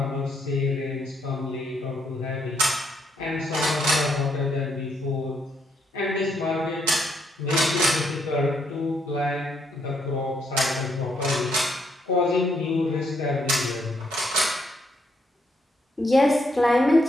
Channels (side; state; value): both; normal; correlation 0.74